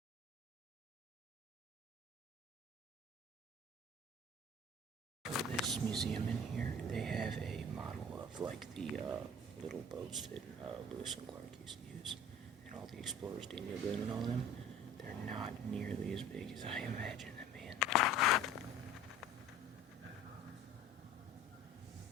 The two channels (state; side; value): normal; both; correlation 0.44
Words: For this museum in here, they have a model of like the little boats that Lewis and Clark used to use. and all the explorers, Daniel Boone and all them, they're not nearly as big as I imagined them being.